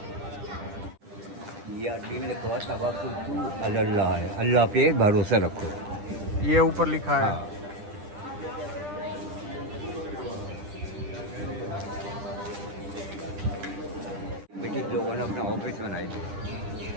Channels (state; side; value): late; left; 10 ms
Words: ये अरबी में लिखा हुआ तवक्कुल अल्लाह है, अल्लाह पे भरोसा रखो. ये ऊपर लिखा है. ब्रिटिश लोगों ने अपना ऑफिस बनाए थे.